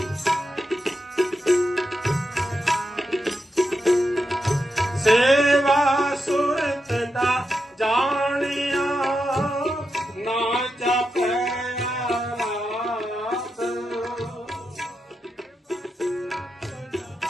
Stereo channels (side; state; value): both; normal; correlation 0.87